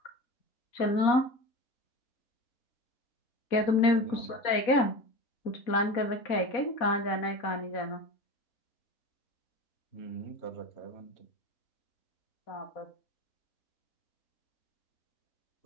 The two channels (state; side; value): late; right; 4.1 ms